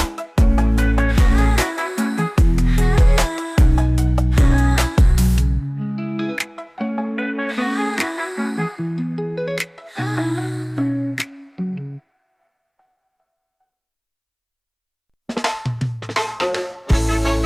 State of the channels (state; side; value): identical; both; correlation 1.00